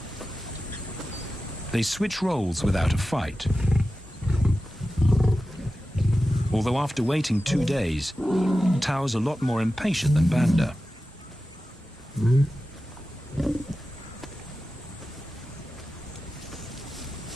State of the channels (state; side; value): normal; both; correlation 0.93